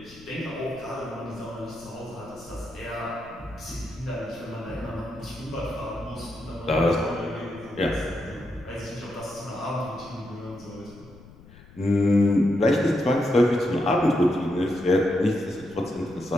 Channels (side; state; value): left; noise; rumble, 21 dB below the sound